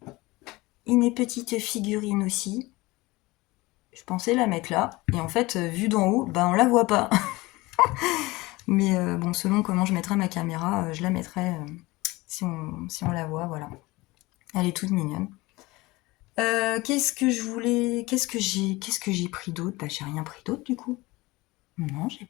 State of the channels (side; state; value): right; quieter; 21.3 dB